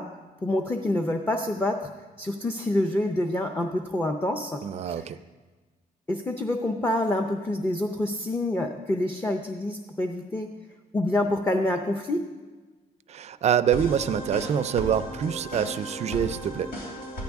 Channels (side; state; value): both; normal; correlation 0.63